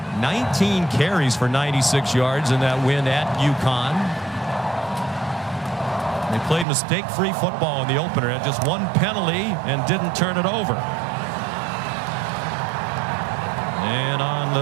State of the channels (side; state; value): left; drops out; at 6.7 s